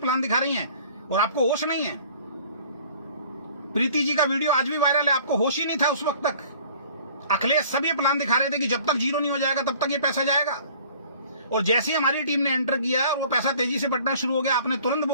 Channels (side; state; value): both; inverted; correlation -0.51